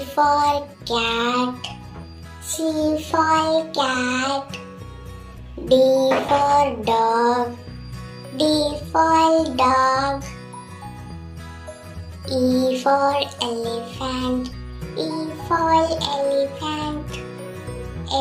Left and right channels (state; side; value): identical; both; correlation 1.00